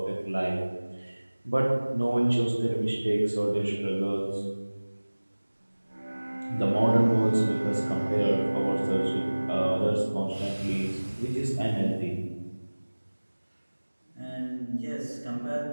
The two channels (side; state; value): both; inverted; correlation -1.00